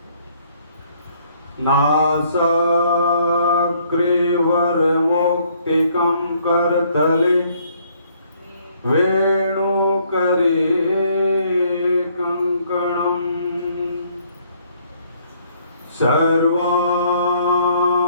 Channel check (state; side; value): inverted; both; correlation -0.65